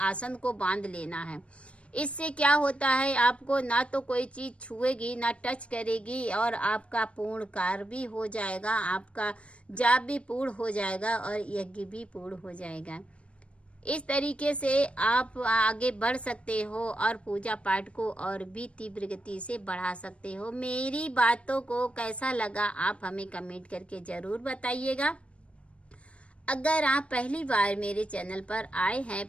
को बांध लेना है। इससे क्या होता है, आपको ना तो कोई चीज़ छुएगी ना टच करेगी और आपका पूर्ण कार्य भी हो जाएगा, आपका जाप भी पूर्ण हो जाएगा और यज्ञ भी पूर्ण हो जाएगा। इस तरीके से आप आगे बढ़ सकते हो और पूजा पाठ को और भी तीव्र गति से बढ़ा सकते हो। मेरी बातों को कैसा लगा आप हमें कमेंट करके ज़रूर बताइएगा। अगर आप पहली बार मेरे चैनल पर आए हैं,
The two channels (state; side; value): late; right; 0.061 ms